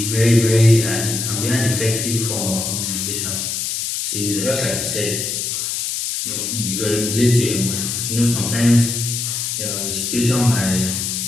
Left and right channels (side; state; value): left; noise; hiss, 2 dB below the sound